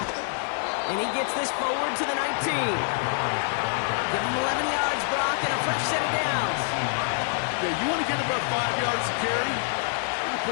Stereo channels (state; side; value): silent; right; 61 dB below the other